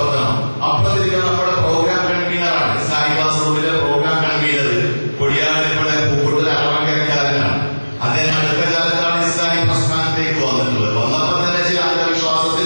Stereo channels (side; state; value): both; inverted; correlation -1.00